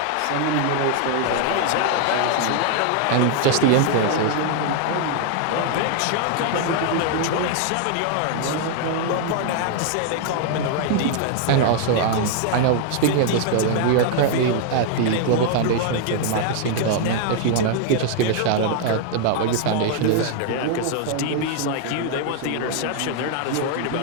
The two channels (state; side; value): different; both; correlation 0.00